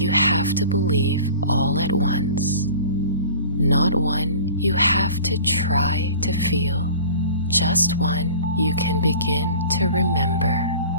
have to believe all at once, not one you have to try to feel, just one you can begin to remember.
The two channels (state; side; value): inverted; both; correlation -0.43